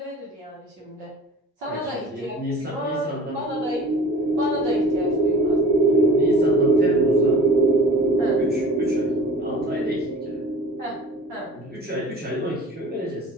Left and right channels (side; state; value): both; normal; correlation 0.42